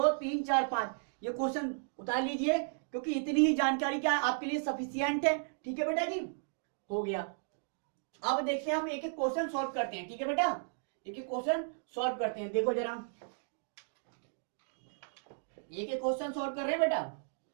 3 4 5 ये क्वेश्चन उतार लीजिए, क्योंकि इतनी ही जानकारी क्या है आपके लिए सफिशिएंट है। ठीक है बेटा जी, हो गया। अब देखते हैं हम एक एक क्वेश्चन सॉल्व करते हैं। ठीक है बेटा, एक एक क्वेश्चन सॉल्व करते हैं। देखो जरा, एक एक क्वेश्चन सॉल्व कर रहे हैं बेटा।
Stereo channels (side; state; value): left; silent; digital silence